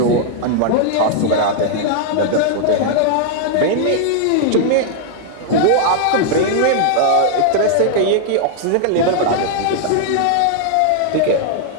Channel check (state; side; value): different; both; correlation -0.01